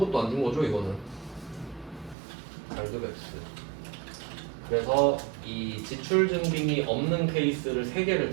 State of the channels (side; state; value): left; drops out; at 2.1 s